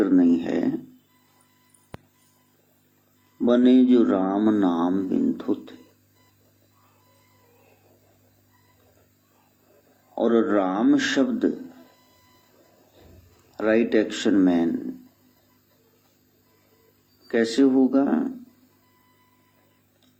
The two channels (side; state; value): both; identical; correlation 1.00